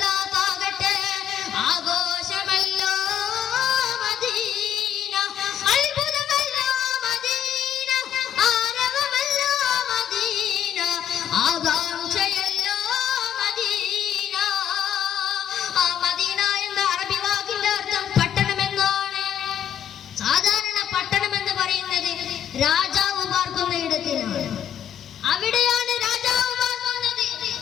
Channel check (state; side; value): quieter; right; 9.7 dB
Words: ആഘോഷമല്ലോ മദീന, അത്ഭുതമല്ലോ മദീന, ആരവമല്ലോ മദീന, ആകാംക്ഷയല്ലോ മദീന. ആ മദീന എന്ന അറബി വാക്കിന്റെ അർത്ഥം പട്ടണം എന്നാണ്. സാധാരണ പട്ടണം എന്ന് പറയുന്നത് രാജാവ് പാർക്കുന്ന ഇടത്തിനാണ്. അവിടെയാണ് രാജാവ് പാർക്കുന്നത്.